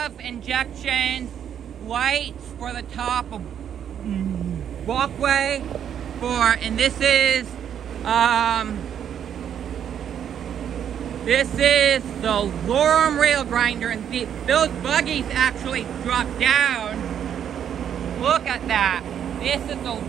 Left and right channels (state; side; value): quieter; left; 9.1 dB